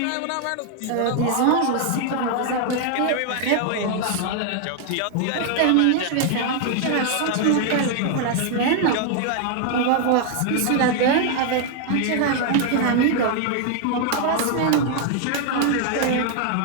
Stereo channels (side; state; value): both; different; correlation 0.00